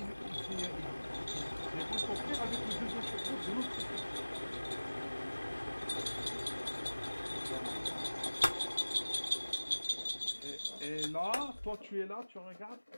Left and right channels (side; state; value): both; inverted; correlation -1.00